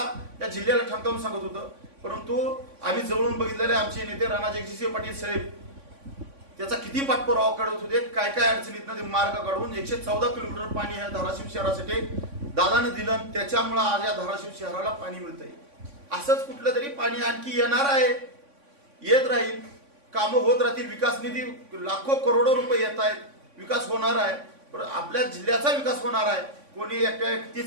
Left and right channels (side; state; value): left; late; 3.5 ms